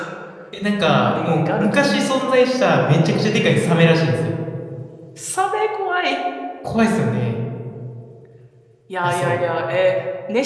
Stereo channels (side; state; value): both; identical; correlation 1.00